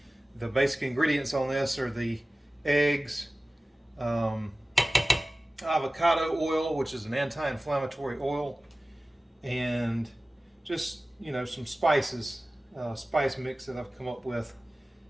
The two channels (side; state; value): both; normal; correlation 0.97